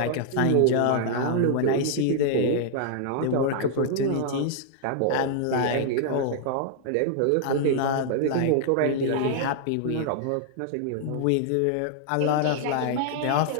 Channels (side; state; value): both; different; correlation -0.01